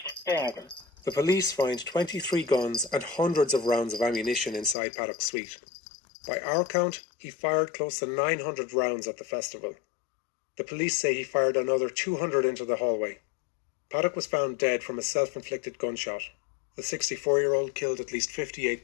The police find 23 guns and hundreds of rounds of ammunition inside Paddock's suite. By our count, he fired close to 900 rounds at the festival. The police say he fired another 200 into the hallway. Paddock was found dead from a self-inflicted gunshot. The 64-year-old killed at least 58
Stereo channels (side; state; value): right; drops out; at 4.8 s